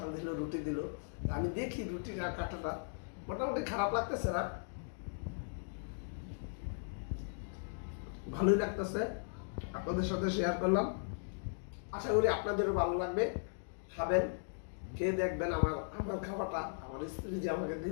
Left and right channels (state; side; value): silent; right; digital silence